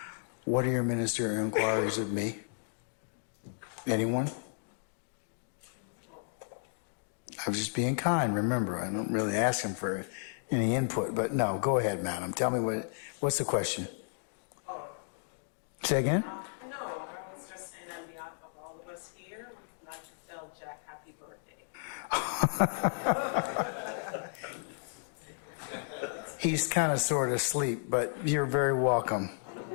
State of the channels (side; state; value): right; silent; digital silence